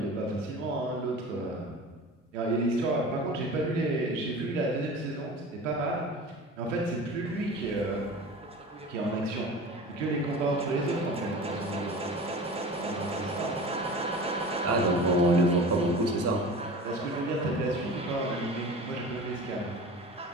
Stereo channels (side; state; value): both; normal; correlation 0.37